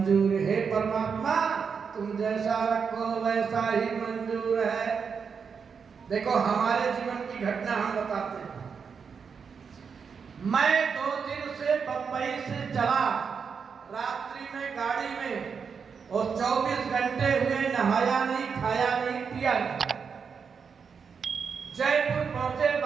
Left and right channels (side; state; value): left; quieter; 6.1 dB